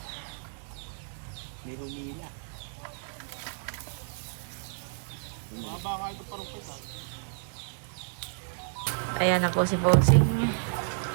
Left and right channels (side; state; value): left; silent; digital silence